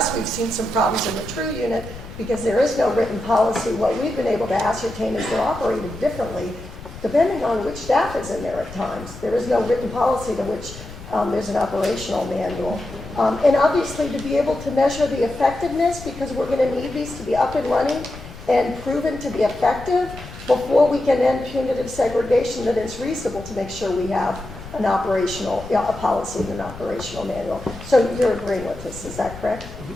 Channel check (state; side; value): noise; left; rumble, 14 dB below the sound